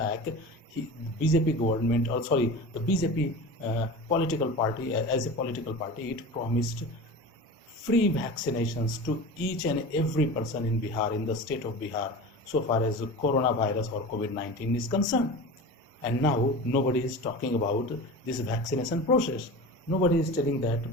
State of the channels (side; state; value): both; normal; correlation 0.32